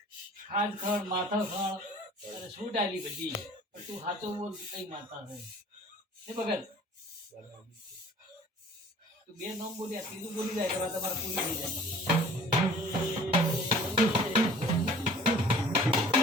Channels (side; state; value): both; normal; correlation 0.48